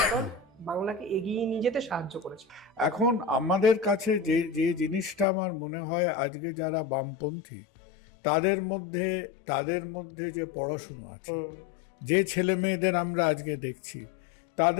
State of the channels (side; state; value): right; drops out; at 5.2 s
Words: দল বাংলাকে এগিয়ে নিয়ে যেতে সাহায্য করেছে? এখন আমাদের কাছে যে যে জিনিসটা আমার মনে হয় আজকে যারা বামপন্থী তাদের মধ্যে যে পড়াশুনো আছে, যে ছেলে মেয়েদের আমরা আজকে দেখছি